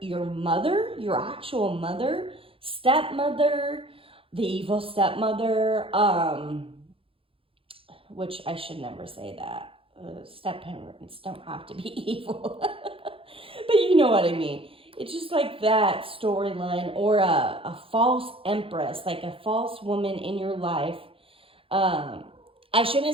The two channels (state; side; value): late; left; 0.27 ms